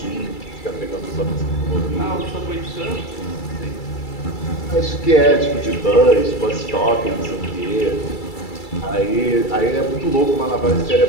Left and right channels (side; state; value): right; late; 2.3 ms